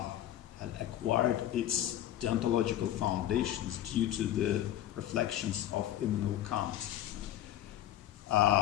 acquired its deontological foundations due to the reflections of Immanuel Kant.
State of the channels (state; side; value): quieter; right; 12.4 dB